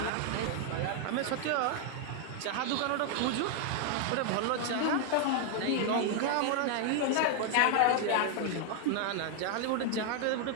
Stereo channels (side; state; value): both; different; correlation 0.00